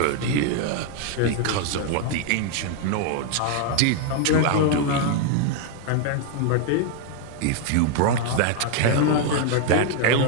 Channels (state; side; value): different; both; correlation 0.00